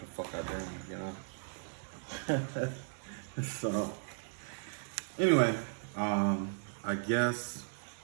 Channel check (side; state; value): left; silent; digital silence